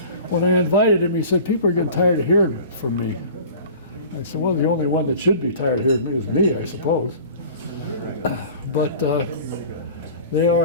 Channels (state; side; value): inverted; both; correlation -0.42